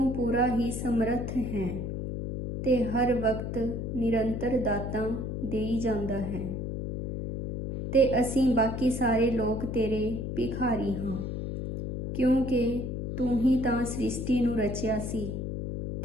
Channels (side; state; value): left; noise; hum, 4 dB below the sound